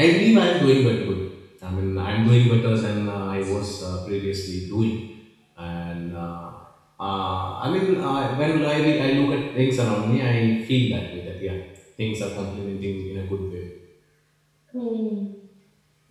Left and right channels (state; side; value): identical; both; correlation 1.00